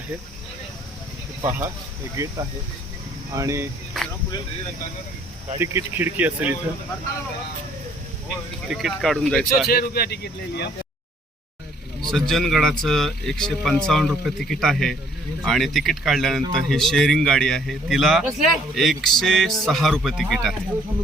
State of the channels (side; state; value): both; normal; correlation 0.61